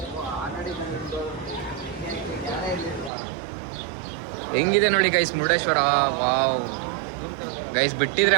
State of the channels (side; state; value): left; drops out; at 3.1 s